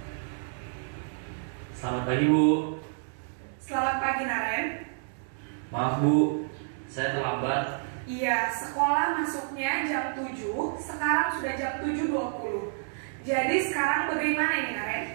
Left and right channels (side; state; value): left; silent; digital silence